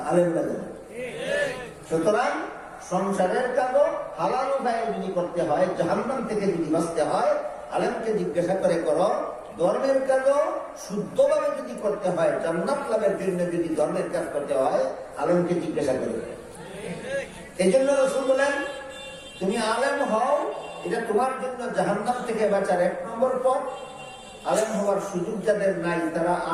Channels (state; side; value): identical; both; correlation 1.00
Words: আলেমরা জানে। সুতরাং সংসারের কাজও হালাল উপায়ে যদি করতে হয়, জাহান্নাম থেকে যদি বাঁচতে হয়, আলেমকে জিজ্ঞাসা করে করো। ধর্মের কাজও শুদ্ধভাবে যদি করতে হয়, জান্নাত লাভের জন্য যদি ধর্মের কাজ করতে হয়, আলেমকে জিজ্ঞাসা করে। এই জন্য রাসূল বলেন তুমি আলেম হও, এটা তোমার জন্য জাহান্নাম থেকে বাঁচার 1 নম্বর পথ। আলেম হওয়ার সুযোগ যাদের নাই তারা